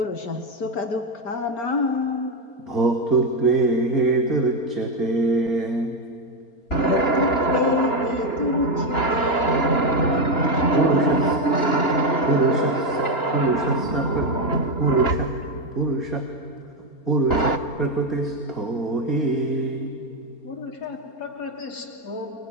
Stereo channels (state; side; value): late; right; 4.3 ms